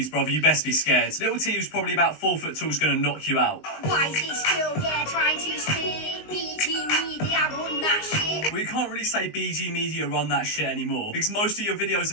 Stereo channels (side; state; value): right; late; 19 ms